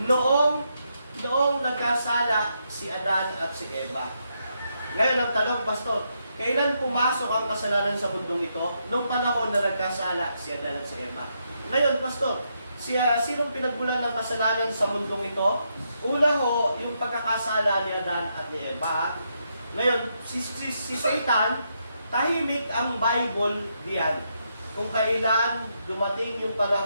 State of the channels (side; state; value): both; inverted; correlation -0.80